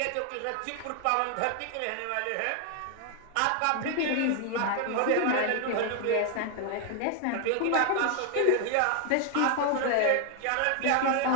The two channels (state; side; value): different; both; correlation 0.00